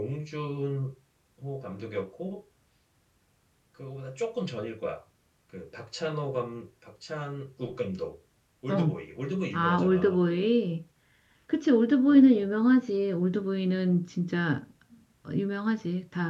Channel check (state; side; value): identical; both; correlation 1.00